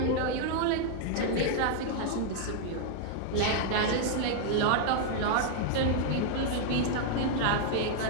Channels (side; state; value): both; different; correlation 0.00